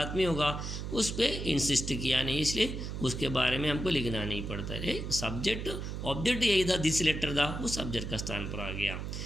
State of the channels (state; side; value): noise; right; hum, 5 dB below the sound